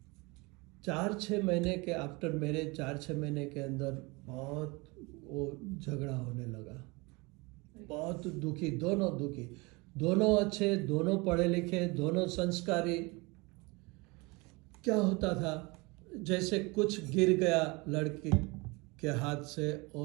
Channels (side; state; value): left; quieter; 26.0 dB